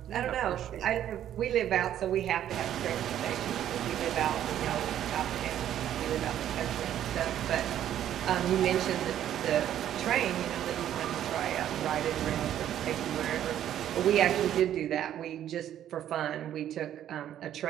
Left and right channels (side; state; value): left; quieter; 11.1 dB